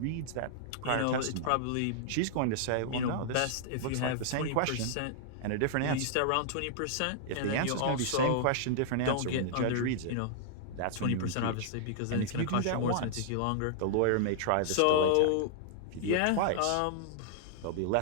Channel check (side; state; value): both; different; correlation -0.01